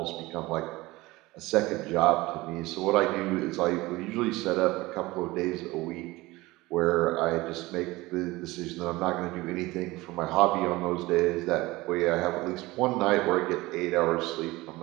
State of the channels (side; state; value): left; quieter; 20.3 dB